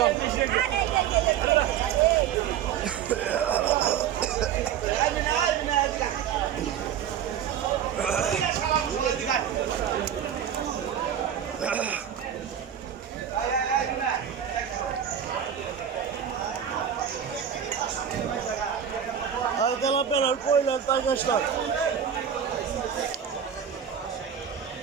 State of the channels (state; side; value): quieter; left; 9.0 dB